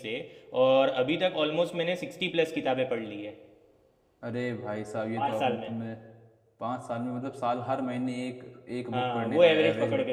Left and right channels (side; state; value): both; identical; correlation 1.00